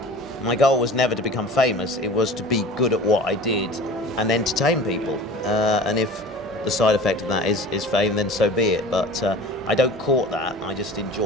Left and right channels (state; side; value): normal; both; correlation 0.39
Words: My goal was never to become famous. It was to be good at what I did and entertain people. And if the side effect of that is fame, then so be it. But I don't court that. I just